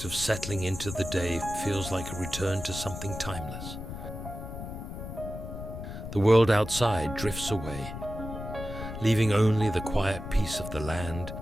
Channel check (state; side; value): noise; left; rumble, 8 dB below the sound